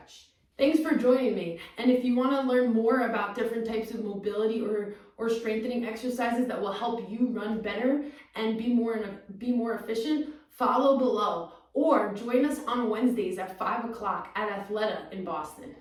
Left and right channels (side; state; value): both; identical; correlation 1.00